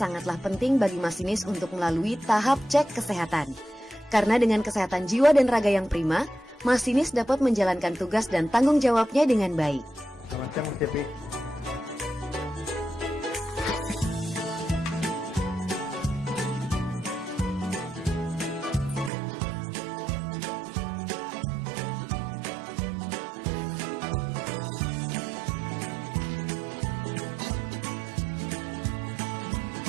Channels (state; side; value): drops out; left; at 19.1 s